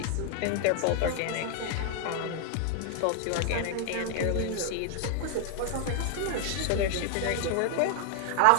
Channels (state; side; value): different; both; correlation 0.00